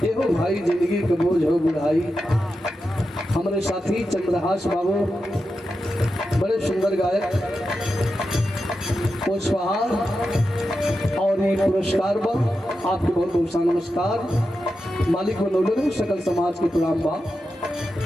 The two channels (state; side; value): normal; both; correlation 0.89